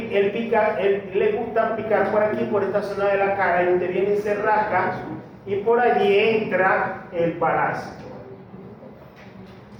le gusta picar por aquí, por esta zona de la cara, y usted viene y se rasca, y por allí entra el parásito.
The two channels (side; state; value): both; identical; correlation 1.00